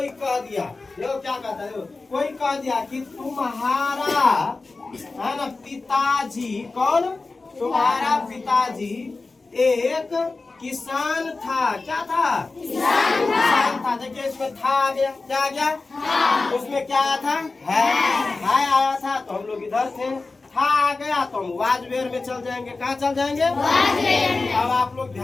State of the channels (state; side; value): quieter; right; 3.7 dB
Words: कह दिया, देखो क्या कहता है, कोई कह दिया कि तुम्हारा है ना पिताजी। कौन? तुम्हारा पिताजी एक किसान था। क्या था? किसान था। देखिए इसमें था आ गया। क्या आ गया? उसमें क्या आया था? है आया था तो हम लोग इधर थे। था आ गया तो हम वाजवेयर में चल जाएंगे। कहाँ चल जाएंगे? अब आप लोग